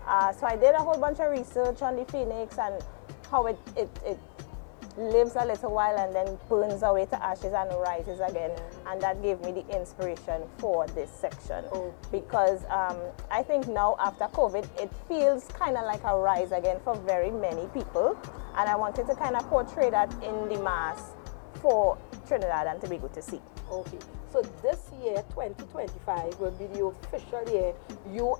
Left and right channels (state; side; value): silent; right; digital silence